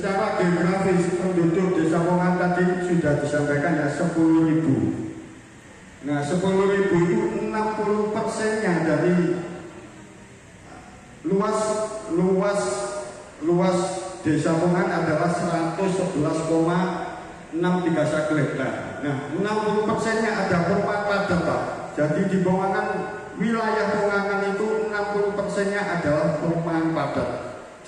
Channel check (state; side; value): identical; both; correlation 1.00